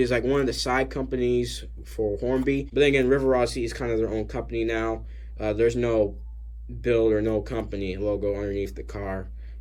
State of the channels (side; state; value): both; identical; correlation 1.00